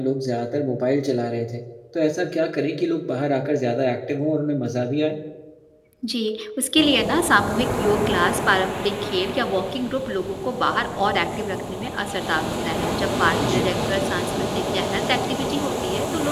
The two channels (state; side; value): identical; both; correlation 1.00